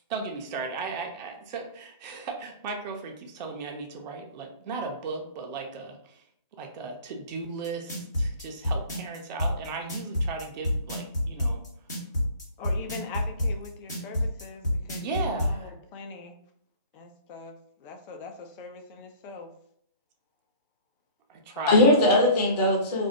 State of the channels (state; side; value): inverted; both; correlation -0.43